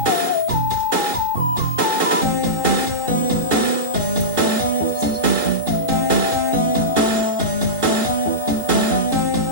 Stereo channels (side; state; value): left; late; 4.1 ms